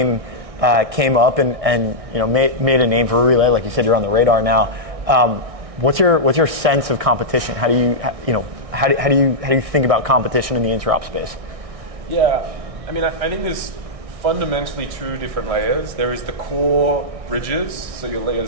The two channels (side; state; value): left; late; 1.6 ms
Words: came up and made a name for Relay. Like you said, you're on the radar now. What's your sense of competition? How do you think about competition in the interop space? Yeah, I mean, I think there's fundamentally two different layers. There is the core bridges, so your layer